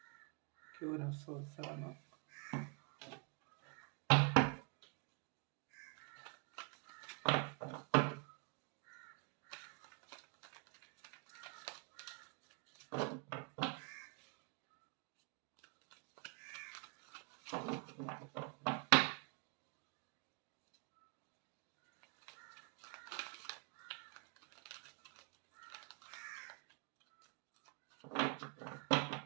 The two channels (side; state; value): left; quieter; 35.8 dB